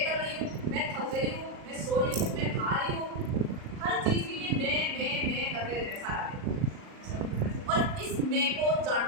कर रही हूँ, मैं थक गई हूँ, मैं सो रही हूँ, मैं खा रही हूँ, हर चीज के लिए मैं करते रहते सारा दिन। और इस मैं को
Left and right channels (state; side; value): late; left; 38 ms